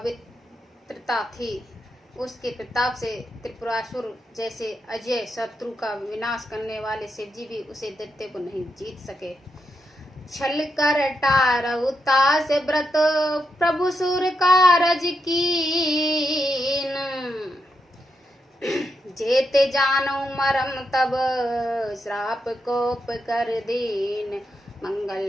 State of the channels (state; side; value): normal; both; correlation 0.84